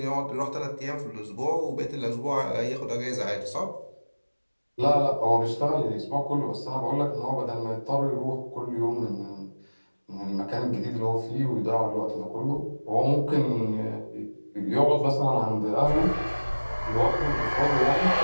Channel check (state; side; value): inverted; both; correlation -1.00